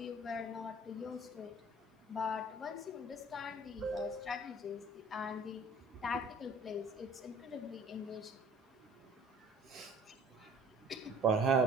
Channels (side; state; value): both; normal; correlation 0.51